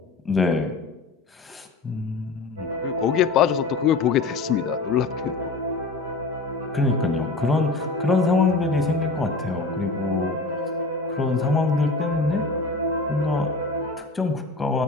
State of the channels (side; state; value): right; quieter; 3.6 dB